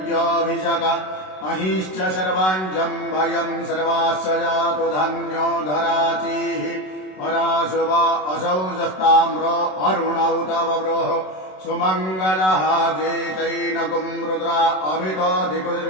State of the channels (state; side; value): late; right; 27 ms